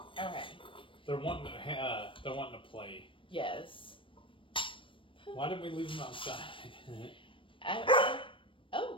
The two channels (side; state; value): right; late; 0.25 ms